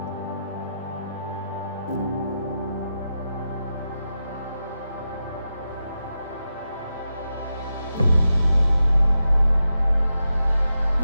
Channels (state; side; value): inverted; both; correlation -0.88